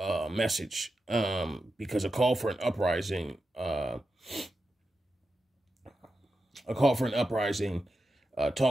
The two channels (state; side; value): normal; both; correlation 0.90